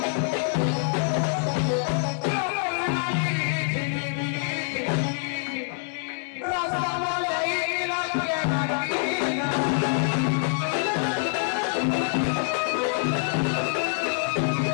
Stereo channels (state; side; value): silent; right; 61 dB below the other